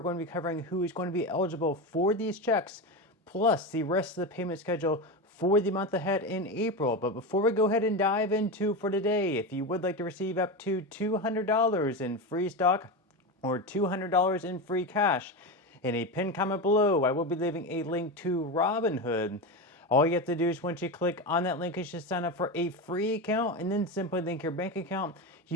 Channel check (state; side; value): normal; both; correlation 0.18